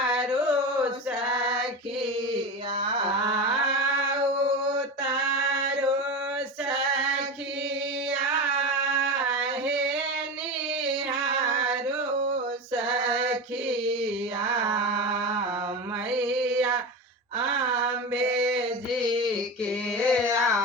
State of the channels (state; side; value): normal; both; correlation 0.23